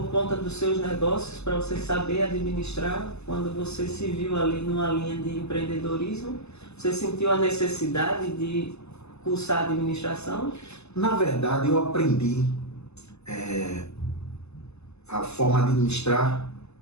conta dos seus negócios, para você saber administrar. Quando você se viu ali numa linha de empreendedorismo, você sentiu a necessidade de cursar administração? Na verdade, eu aprendi a forma de administrar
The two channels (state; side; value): late; right; 0.80 ms